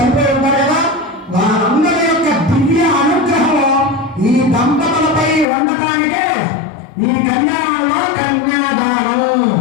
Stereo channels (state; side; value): drops out; right; at 5.5 s